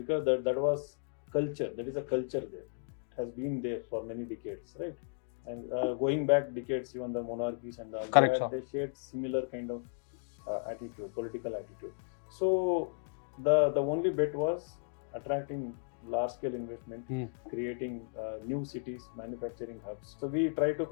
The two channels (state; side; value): silent; right; digital silence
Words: that was culture. That is a culture there. It has been there for many decades, right? And going back decades, even the monarchies and all, they shared similar kind of attitude, political attitude. So the only bet was attracting large-scale investment, creating new cities, manufacturing hubs. So we try to